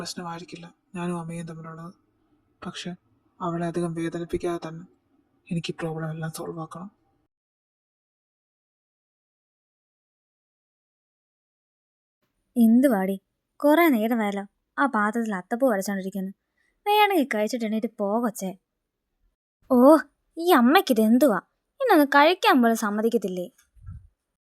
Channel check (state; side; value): identical; both; correlation 1.00